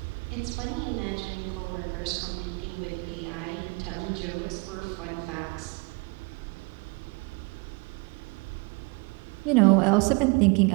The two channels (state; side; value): quieter; left; 29.6 dB